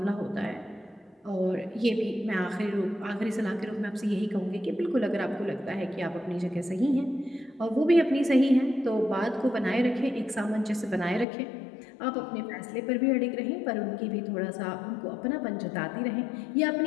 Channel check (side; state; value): right; drops out; at 11.2 s